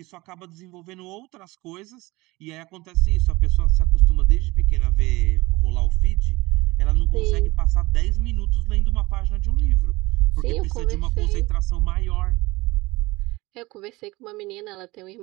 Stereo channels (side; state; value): left; quieter; 21.5 dB